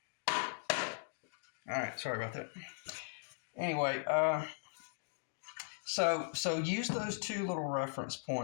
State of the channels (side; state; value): right; silent; digital silence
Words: All right, sorry about that. Anyway, so use those two little reference